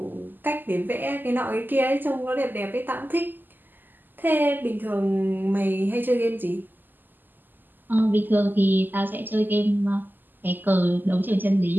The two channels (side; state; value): left; late; 0.090 ms